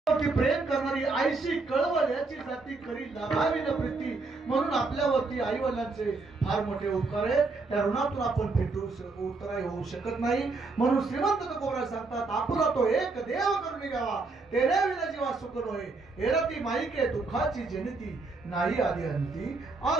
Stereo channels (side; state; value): left; quieter; 3.7 dB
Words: प्रेम करणारी आईशी कळवळ याची जाती करी लाभावी न प्रीती. म्हणून आपल्यावरती आई वडिलांचे फार मोठे उपकार आहेत. त्या ऋणातून आपण उतराई होऊ शकत नाही. म्हणून श्रीमंत तुकोबराय सांगतात, आपुला तो एक देव करून घ्यावा, तेरे विना जीवा सुख नोहे, एरती माईके दुःखाची जनिती, नाही आधी अंती